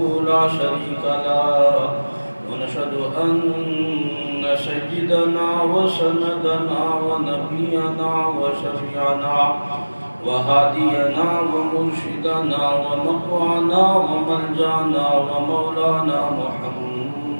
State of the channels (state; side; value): inverted; both; correlation -1.00